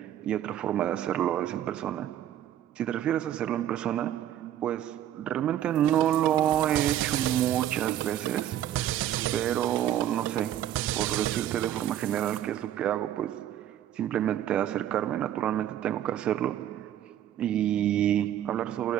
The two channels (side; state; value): left; quieter; 11.5 dB